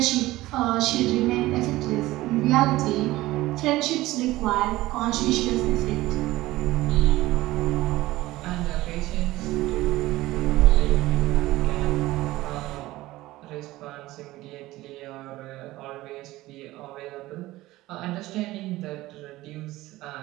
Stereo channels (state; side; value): quieter; left; 17.7 dB